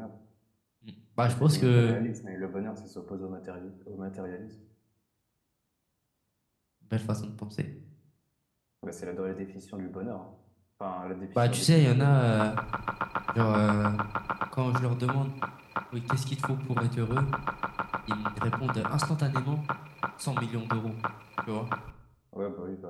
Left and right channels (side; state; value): both; identical; correlation 1.00